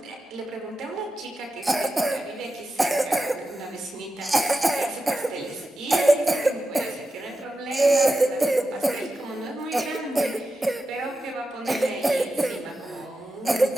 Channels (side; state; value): both; normal; correlation 0.91